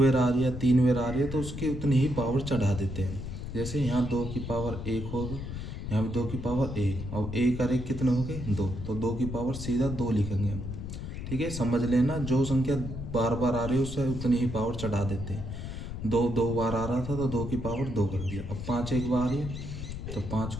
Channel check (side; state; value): left; noise; rumble, 7 dB below the sound